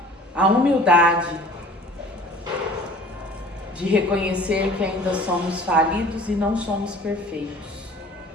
a humildade de reconhecer que ainda somos falidos e não somos perfeitos.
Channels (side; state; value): both; normal; correlation 0.47